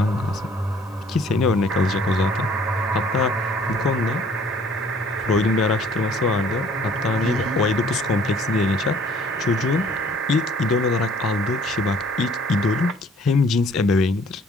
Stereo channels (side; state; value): both; normal; correlation 0.57